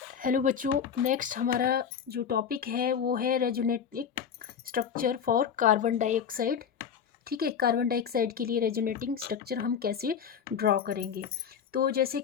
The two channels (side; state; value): right; quieter; 7.6 dB